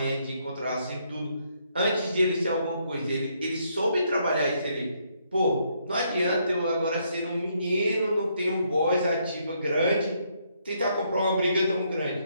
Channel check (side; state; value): both; inverted; correlation -0.73